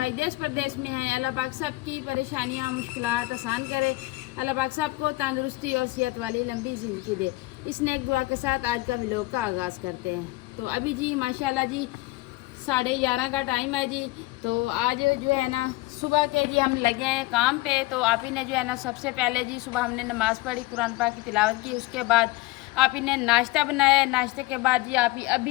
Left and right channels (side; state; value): right; quieter; 20.2 dB